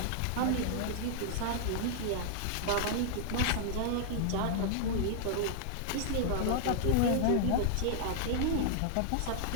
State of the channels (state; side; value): different; both; correlation -0.01